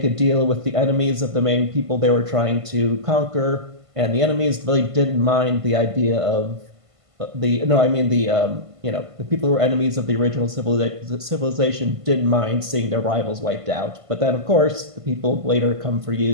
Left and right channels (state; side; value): late; left; 1.5 ms